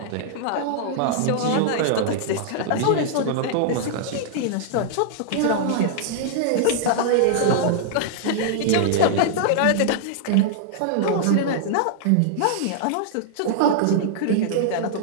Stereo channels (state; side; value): different; both; correlation -0.01